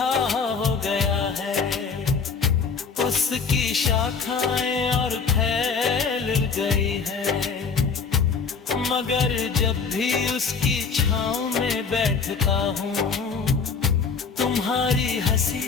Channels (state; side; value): quieter; right; 5.5 dB